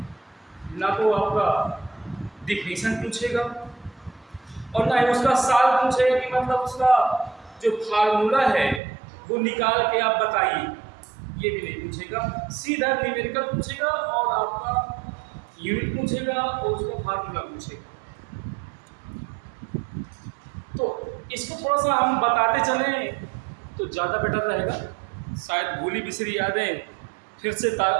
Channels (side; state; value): left; drops out; at 8.8 s